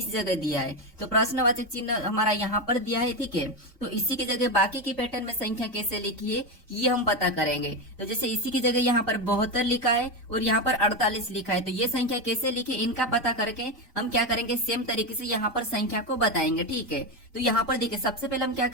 जगह दिया है। तो प्रश्नवाचक चिन्ह हमारा यहाँ पर दिया है, ठीक है। तो इसी की जगह बाकी की पैटर्न में संख्या कैसे लिखी है ये हम पता करेंगे। तो जैसे इसी की जगह यहाँ पर 72 लिखा है और यहाँ पर 48 लिखा है, तो ये संख्या कैसे लिखे इनका पता करके हम क्या करेंगे, सेम तरीके से यहाँ पर संख्या को बताएंगे। ठीक है, तो यहाँ पर देखिए सबसे पहले हम क्या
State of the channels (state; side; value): normal; both; correlation 0.13